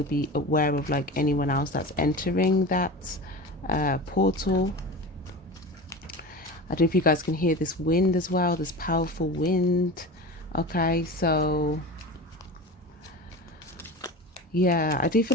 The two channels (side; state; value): both; normal; correlation 0.30